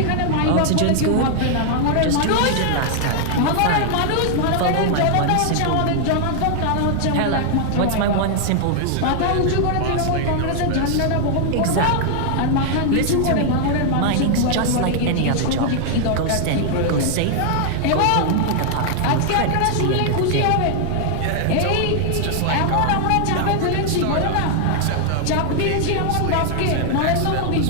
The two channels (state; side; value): different; both; correlation 0.00